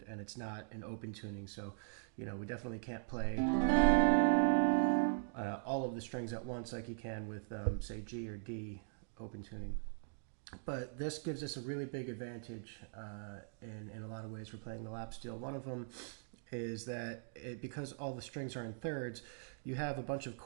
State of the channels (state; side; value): silent; left; digital silence